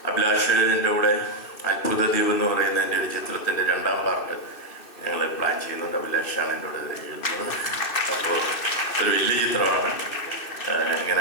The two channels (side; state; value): right; late; 2.6 ms